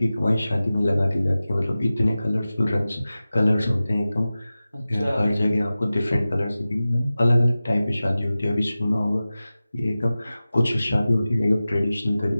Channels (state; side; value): inverted; both; correlation -0.96